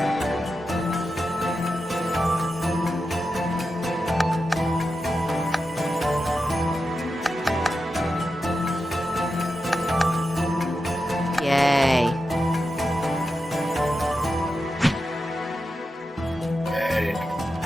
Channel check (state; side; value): normal; both; correlation 0.90